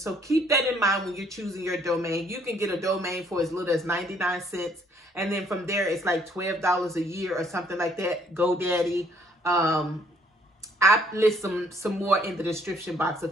keep that in mind when you're choosing your domain. You can get a domain for as little as 99 cents. And then from there, it's like $12 a year or something like that. GoDaddy. I list some more in the description box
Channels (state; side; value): normal; both; correlation 0.64